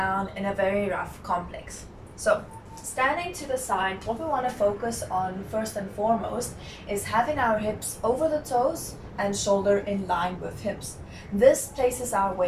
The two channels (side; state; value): both; identical; correlation 1.00